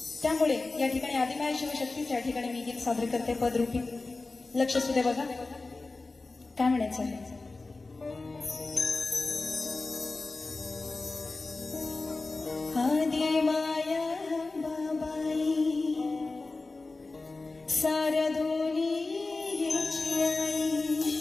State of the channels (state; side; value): quieter; right; 3.5 dB